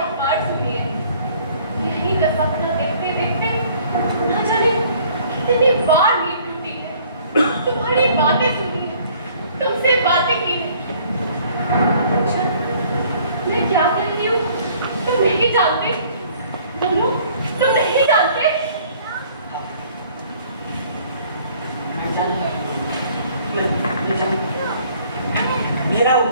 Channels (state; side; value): inverted; both; correlation -0.57